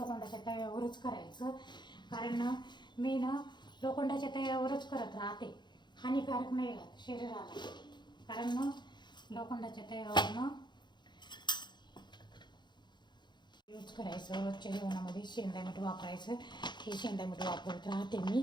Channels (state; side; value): late; right; 0.21 ms